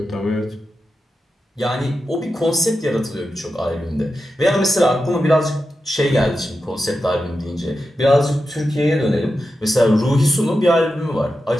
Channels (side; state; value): both; normal; correlation 0.90